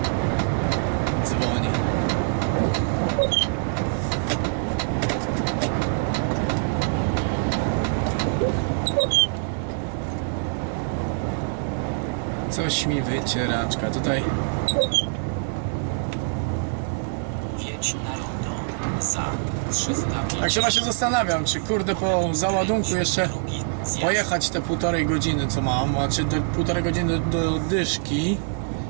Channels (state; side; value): silent; left; 62 dB below the other